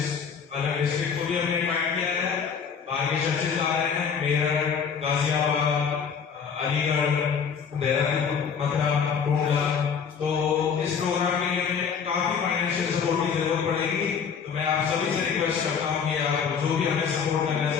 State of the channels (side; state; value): right; quieter; 6.7 dB